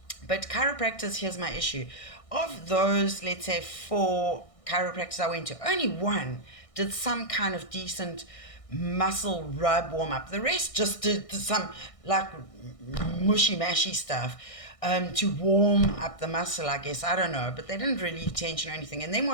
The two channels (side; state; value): right; late; 1.6 ms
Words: But chiropractors, here's my issue. Of those, let's say 4 chiropractors I went to, only one did some kind of decent muscle rub warm up. The rest just did some like mushy mashy stuff to warm up the muscle, I guess. I don't know, but they didn't relieve tension or anything. And then